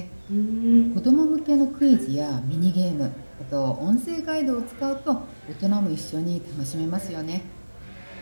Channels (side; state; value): both; inverted; correlation -1.00